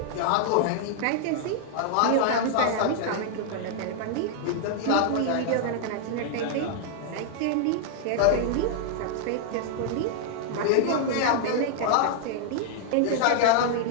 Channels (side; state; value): both; different; correlation -0.01